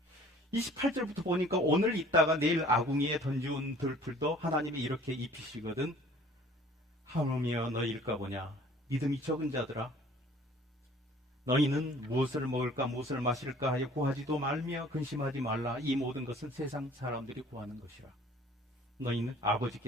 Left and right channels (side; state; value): both; normal; correlation 0.52